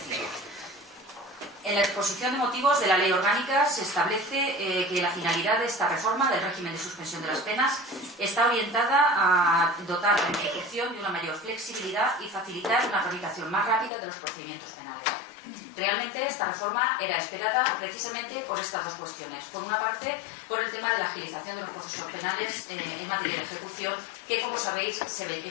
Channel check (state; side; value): drops out; right; at 13.9 s